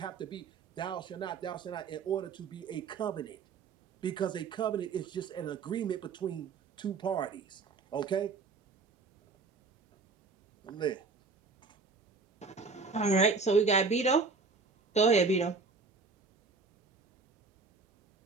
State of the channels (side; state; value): left; quieter; 4.4 dB